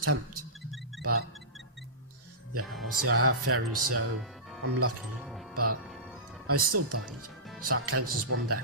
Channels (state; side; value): normal; both; correlation -0.19